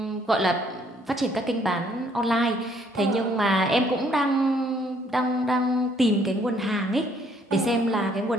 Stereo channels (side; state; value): both; normal; correlation 0.65